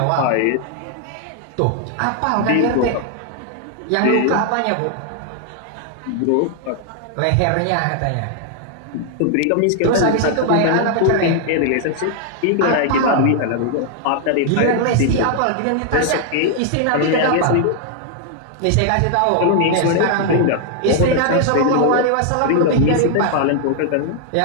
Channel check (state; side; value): different; both; correlation 0.00